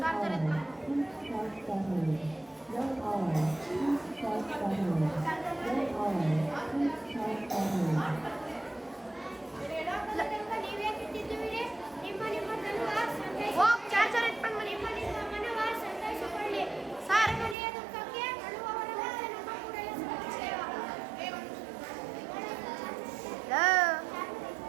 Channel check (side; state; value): left; drops out; at 17.6 s